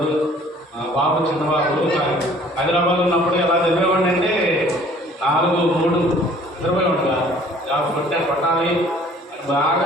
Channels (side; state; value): both; normal; correlation 0.54